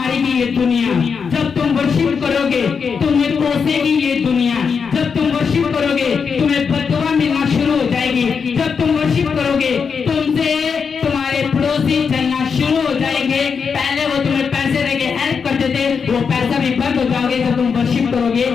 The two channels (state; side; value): quieter; right; 6.0 dB